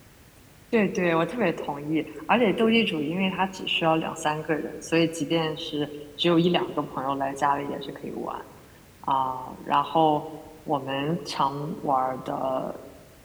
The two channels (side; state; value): both; identical; correlation 1.00